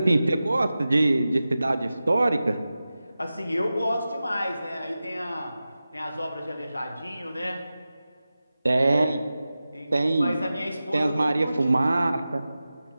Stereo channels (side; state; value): both; inverted; correlation -0.94